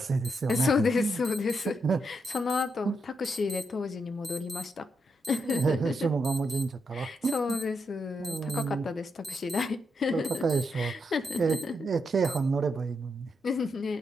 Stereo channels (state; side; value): normal; both; correlation 0.81